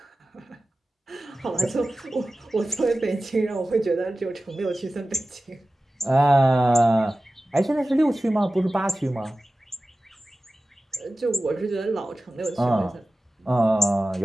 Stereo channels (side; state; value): both; normal; correlation 0.95